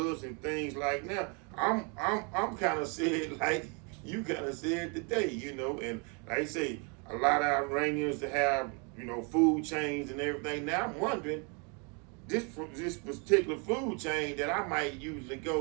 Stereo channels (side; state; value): left; quieter; 34.6 dB